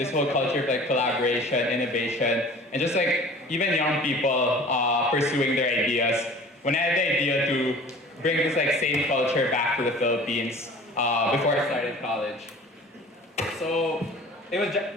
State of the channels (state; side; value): normal; both; correlation 0.44